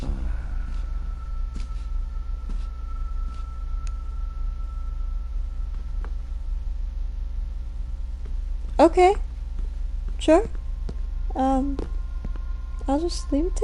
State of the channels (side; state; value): both; identical; correlation 1.00